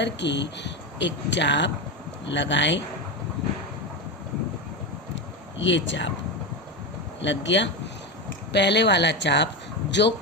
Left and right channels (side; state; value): both; normal; correlation 0.15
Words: एक चाप लगाएं। ये चाप लग गया। पहले वाला चाप जो